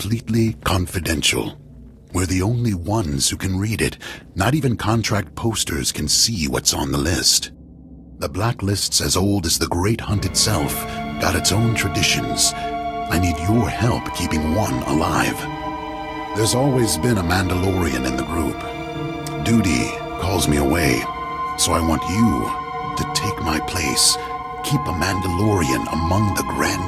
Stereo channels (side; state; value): both; identical; correlation 1.00